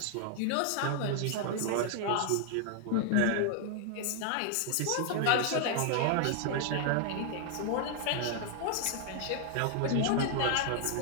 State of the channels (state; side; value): different; both; correlation 0.00